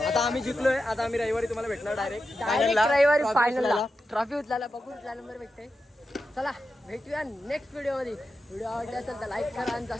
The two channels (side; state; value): both; normal; correlation 0.90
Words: आता आम्ही जिंकलोय. आता आम्ही रविवारी तुम्हाला भेटणार डायरेक्ट रविवारी फायनलला ट्रॉफी उचलायला बघू कुठला नंबर भेटते. चला भेटूया नेक्स्ट व्हिडिओमध्ये. व्हिडिओ आवडला असेल तर लाईक करा आणि